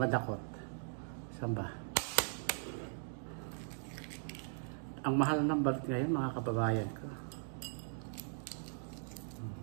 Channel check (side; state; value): left; silent; digital silence